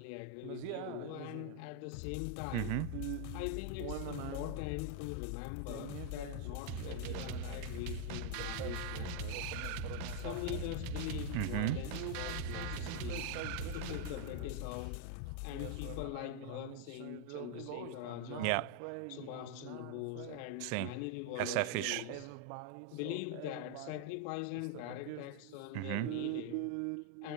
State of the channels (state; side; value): different; both; correlation 0.00